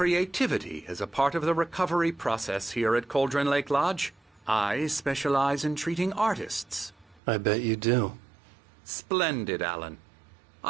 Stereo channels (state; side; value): drops out; left; at 7.2 s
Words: as a part of the recovery process here at Cauldron Lake Lodge. I specialize in treating artists. I bet you do. Splendid, Alan.